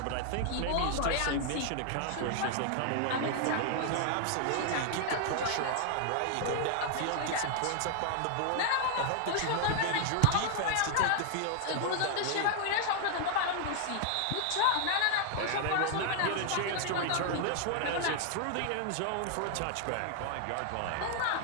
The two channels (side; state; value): both; different; correlation 0.00